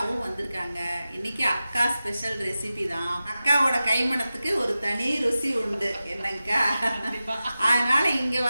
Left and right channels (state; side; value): inverted; both; correlation -0.94